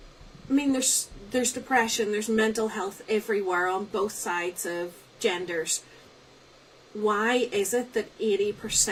I mean, there's depression, there's mental health everywhere on both sides of genders. Why is it that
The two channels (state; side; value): identical; both; correlation 1.00